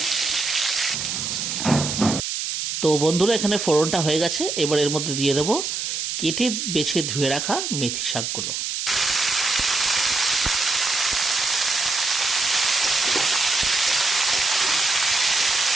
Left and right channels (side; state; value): right; noise; hiss, 3 dB below the sound